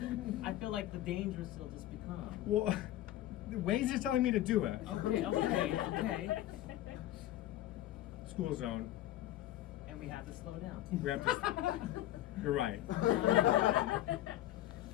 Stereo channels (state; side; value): quieter; right; 14.2 dB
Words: I feel like the dangerous will just become. Well, Waze is telling me to do it. Okay. School zone. And we have to slow down. We have to. You're right.